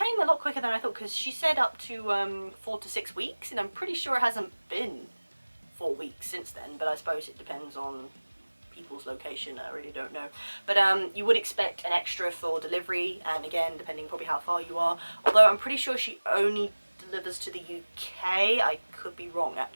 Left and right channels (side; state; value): both; inverted; correlation -1.00